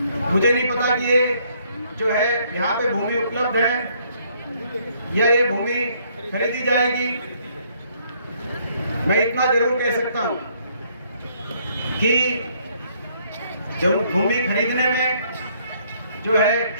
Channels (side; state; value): both; inverted; correlation -0.67